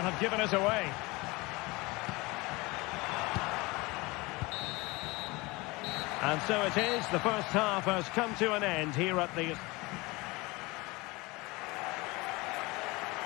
have given us away. And so it is. The first half has come to an end here at the...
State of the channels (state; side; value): quieter; right; 23.6 dB